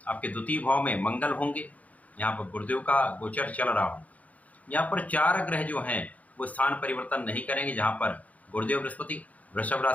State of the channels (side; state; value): right; late; 0.072 ms